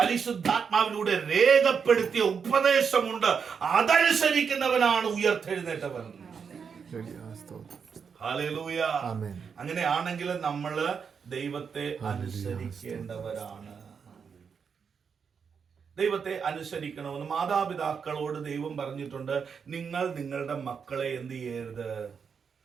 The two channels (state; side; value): quieter; left; 6.3 dB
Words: രക്തത്തിലൂടെ രേഖപ്പെടുത്തിയ ഉപദേശമുണ്ട്. അതനുസരിക്കുന്നവനാണ് ഉയർത്തെഴുന്നേറ്റവൻ. ഹല്ലേലൂയ. അങ്ങനെയാണെങ്കിൽ നമ്മള് ദൈവത്തെ അനുസരിക്കേണ്ടവരാണ്. ദൈവത്തെ അനുസരിക്കണമെന്ന് മാതാപിതാക്കളോട് ദൈവം പറഞ്ഞിട്ടുണ്ട്. നിങ്ങൾ നിങ്ങളുടെ മക്കളെ എന്ത് ചെയ്യരുത്?